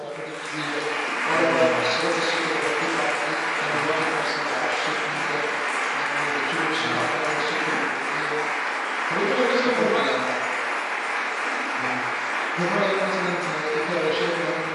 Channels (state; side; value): identical; both; correlation 1.00